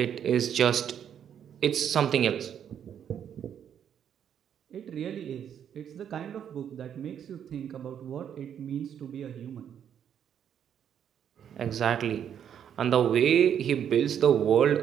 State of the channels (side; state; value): left; quieter; 8.9 dB